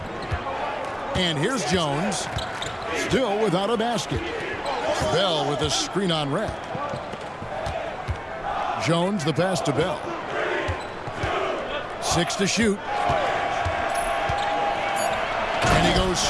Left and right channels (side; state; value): both; identical; correlation 1.00